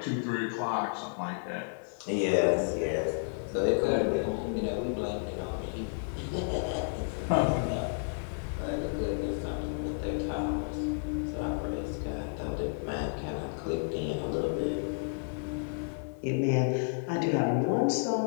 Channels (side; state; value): right; silent; digital silence